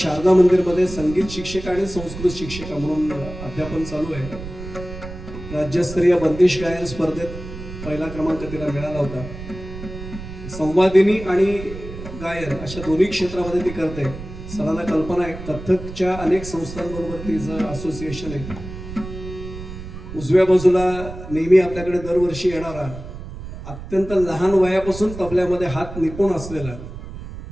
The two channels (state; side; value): noise; right; rumble, 11 dB below the sound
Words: मंदिरमध्ये संगीत शिक्षिका आणि संस्कृत शिक्षिका म्हणून अध्यापन चालू आहे. राज्यस्तरीय बंदिश गायन स्पर्धेत पहिला क्रमांक तिला मिळाला होता. संवादिनी आणि गायन अशा दोन्ही क्षेत्रामध्ये ती करते. सरांना कल्पना आहे, कथकच्या अनेक संस्थांबरोबर तिचं असोसिएशन आहे. उजव्या बाजूला नेहमी आपल्याकडे दरवर्षी येणारा, अत्यंत लहान वयापासून तबल्यामध्ये हात निपुण असलेला